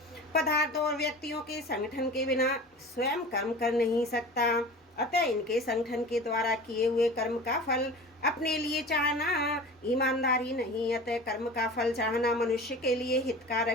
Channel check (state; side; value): normal; both; correlation 0.36